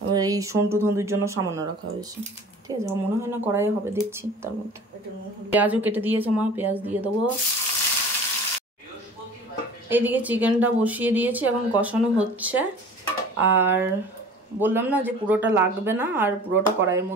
এবার এই সন্টু ধন্দুর জন্য সামান্য রাখা হয়েছে। ঠিক আছে, মনে হয় না কড়াইয়ে হবে, দেখছি। তার মধ্যে পেঁয়াজও কেটে দিয়েছে মা, পেঁয়াজ দিয়ে দেবো। এইদিকে চিকেনটা বসিয়ে দিয়েছি, এখন কষানো হচ্ছে। আর বললাম না যে পুরোটা লাগবে না আর পুরোটা কড়াইয়ের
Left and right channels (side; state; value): both; normal; correlation 0.43